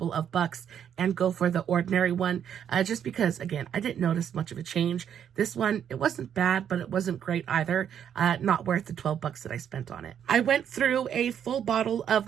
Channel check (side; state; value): left; quieter; 8.9 dB